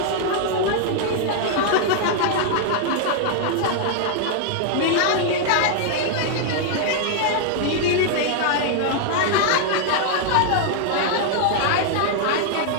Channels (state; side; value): different; both; correlation 0.00